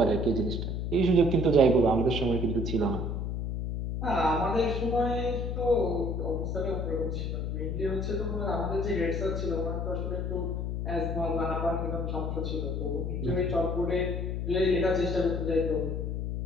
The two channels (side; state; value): left; noise; hum, 2 dB below the sound